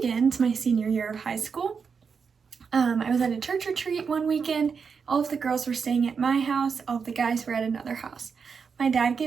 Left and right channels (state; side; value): quieter; left; 5.9 dB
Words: my senior year of high school. I was at a church retreat one weekend. All of the girls were staying at my house, all of the guys were at another house. My dad